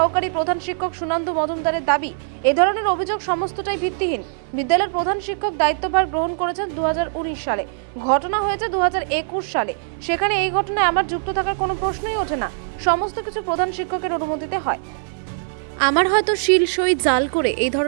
প্রধান শিক্ষক সুনন্দ মজুমদারের দাবি, এ ধরনের অভিযোগ সমস্তটাই ভিত্তিহীন। বিদ্যালয়ের প্রধান শিক্ষক দায়িত্বভার গ্রহণ করেছেন 2019 সালে, ঘটনা হয়েছে 2021 সালে। সেখানে এই ঘটনায় আমার যুক্ত থাকার কোনো প্রশ্নই ওঠে না। সমস্ত কিছু প্রধান শিক্ষকের অনুমতিতে হয়। আমার হয়তো শিল সই জাল করে এই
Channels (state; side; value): silent; left; 65 dB below the other